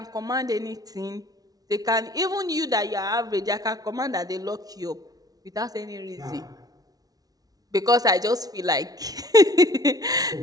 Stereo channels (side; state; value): left; late; 0.18 ms